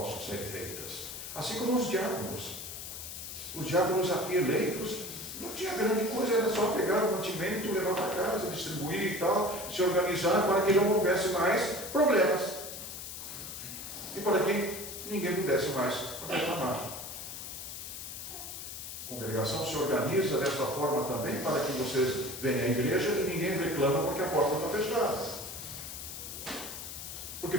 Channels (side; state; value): left; noise; hiss, 9 dB below the sound